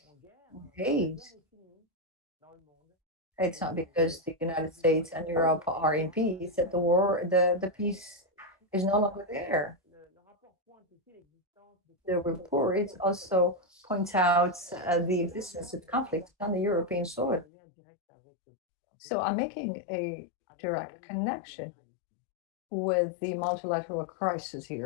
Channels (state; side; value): drops out; right; at 17.4 s